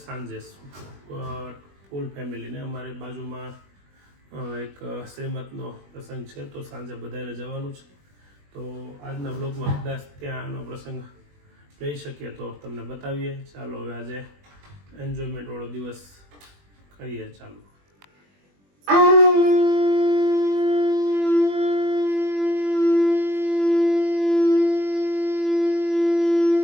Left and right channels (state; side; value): late; left; 21 ms